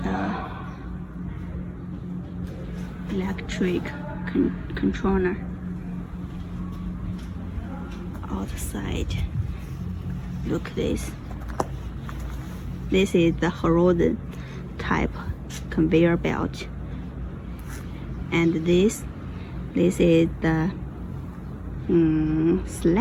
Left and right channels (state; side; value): identical; both; correlation 1.00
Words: the electric controller outside. Look at this. This is the horizon type conveyor belt, and this is the